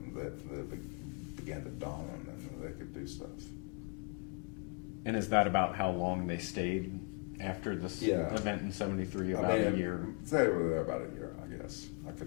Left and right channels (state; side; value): quieter; right; 35.7 dB